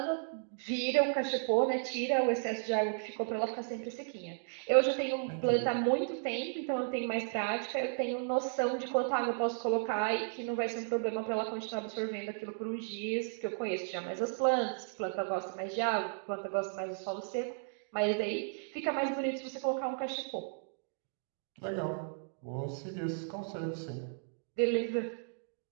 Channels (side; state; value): left; silent; digital silence